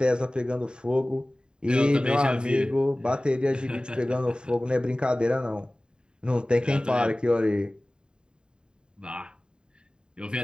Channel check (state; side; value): late; left; 0.049 ms